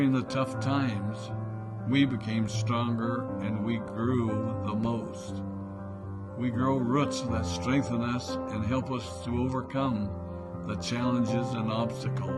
the tough times, we became stronger and we grew the most. We grow roots that strengthen us and help us to overcome the challenges and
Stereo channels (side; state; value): both; identical; correlation 1.00